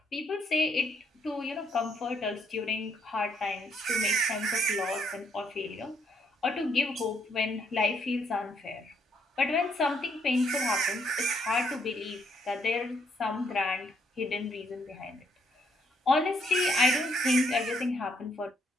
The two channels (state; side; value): normal; both; correlation 0.71